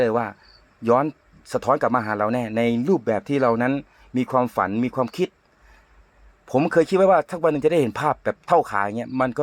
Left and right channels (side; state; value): both; identical; correlation 1.00